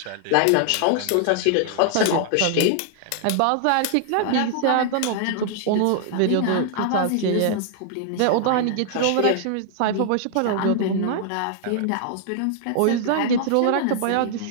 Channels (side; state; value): both; different; correlation -0.01